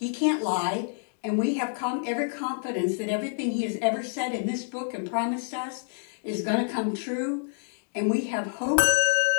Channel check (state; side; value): silent; right; digital silence